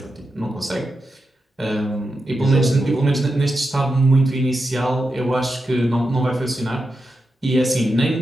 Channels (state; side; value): normal; both; correlation 0.88